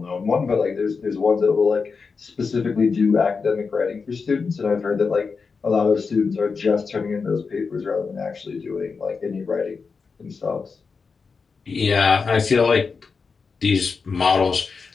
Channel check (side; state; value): right; quieter; 5.0 dB